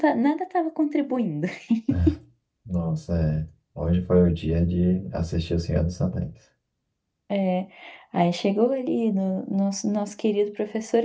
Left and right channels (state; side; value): identical; both; correlation 1.00